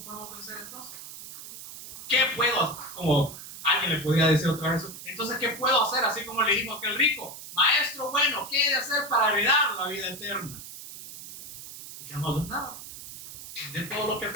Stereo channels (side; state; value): right; noise; hiss, 13 dB below the sound